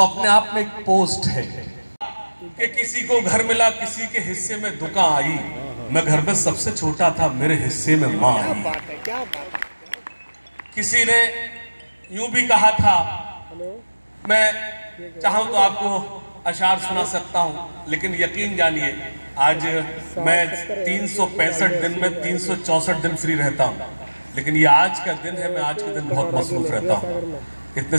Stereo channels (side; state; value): both; inverted; correlation -1.00